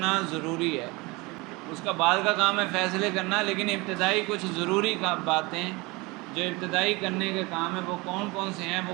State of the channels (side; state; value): left; quieter; 24.7 dB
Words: ضروری ہے۔ اس کا بعد کا کام ہے فیصلے کرنا، لیکن ابتدائی کچھ ضروری باتیں جو ابتدائی کرنے کے کام ہیں وہ کون کون سے ہیں، وہ